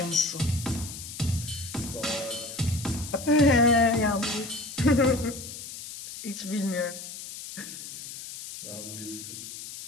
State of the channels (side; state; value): left; noise; hiss, 11 dB below the sound